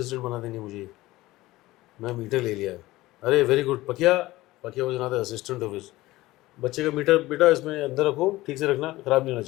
बना देंगे मुझे. मैं मीटर ले लिया. अरे very good Pakiya. Pakiya was not the assistant of his. बच्चे का मीटर बेटा इसमें अंदर रखो, ठीक से रखना, ख़राब नहीं होना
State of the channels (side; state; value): right; quieter; 18.1 dB